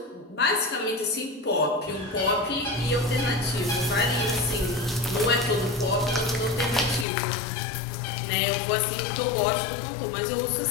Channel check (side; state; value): right; drops out; at 7.1 s